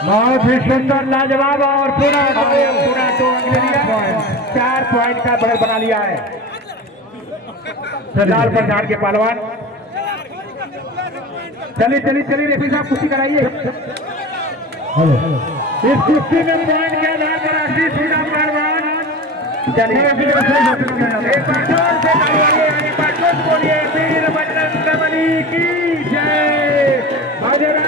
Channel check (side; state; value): both; normal; correlation 0.31